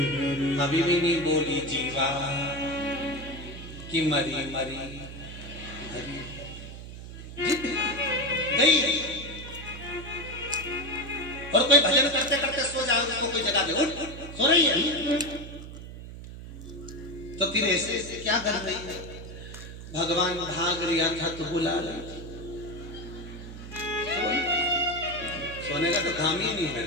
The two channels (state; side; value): noise; right; hum, 12 dB below the sound